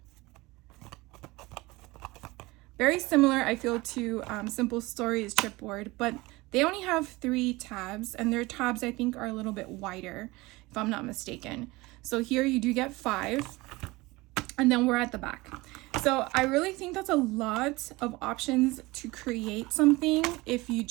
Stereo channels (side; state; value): left; quieter; 21.7 dB